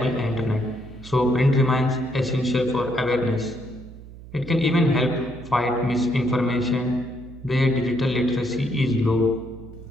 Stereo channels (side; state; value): right; noise; hum, 16 dB below the sound